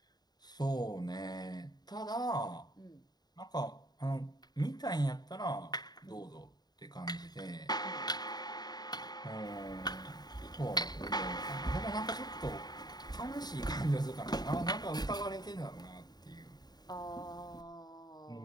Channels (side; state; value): right; late; 0.20 ms